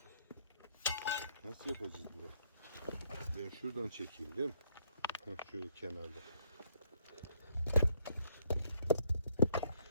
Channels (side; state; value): both; inverted; correlation -0.70